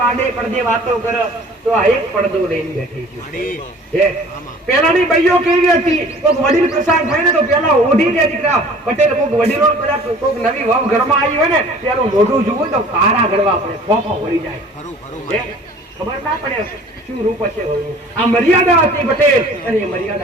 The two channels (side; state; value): both; normal; correlation 0.48